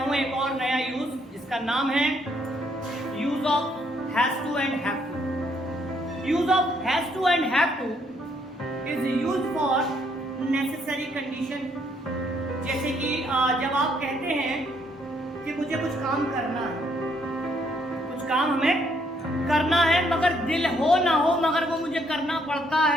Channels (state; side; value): normal; both; correlation 0.70